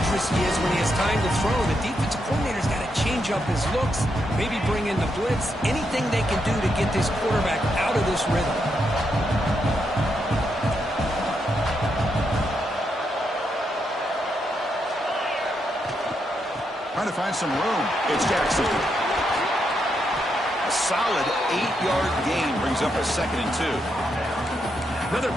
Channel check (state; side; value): normal; both; correlation 0.81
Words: he is when he has time to throw. The defensive coordinator's got to change up his looks, maybe bring in the blitz, anything they can do to get this quarterback out of this rhythm. Trying to find some room. It's Jackson. A solid 8-yard gain brings up a 2nd and 2. Another